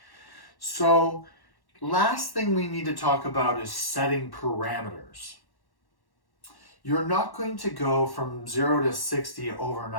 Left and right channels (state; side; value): late; right; 1.1 ms